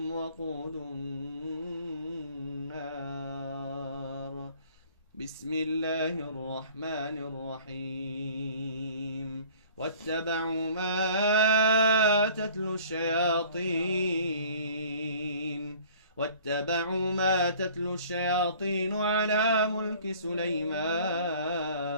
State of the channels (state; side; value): inverted; both; correlation -0.51